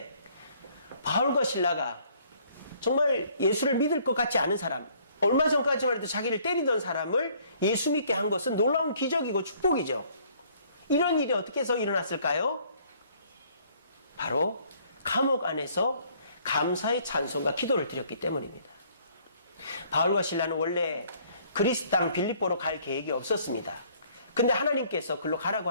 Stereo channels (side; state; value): both; inverted; correlation -0.61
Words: 바울과 실라가 정말 예수를 믿을 것 같지 않은 사람, 얼마 전까지만 해도 자기를 때리던 사람을 예수 믿게 한 것은 놀라운 기적이고 축복이죠. 이런 일이 어떻게 해서 일어났을까요? 바로 감옥 안에서 감사의 찬송과 기도를 드렸기 때문입니다. 바울과 실라는 원래 그리스 땅 빌립보로 갈 계획이 없었습니다. 근데 하나님께서 글로 가라고